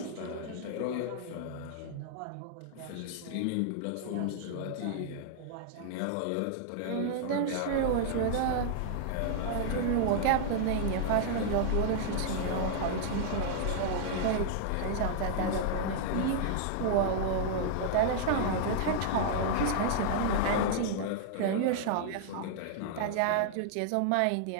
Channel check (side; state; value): both; different; correlation -0.01